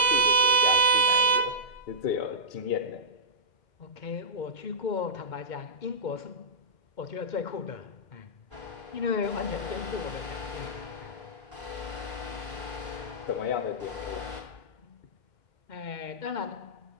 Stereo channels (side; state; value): right; late; 2.1 ms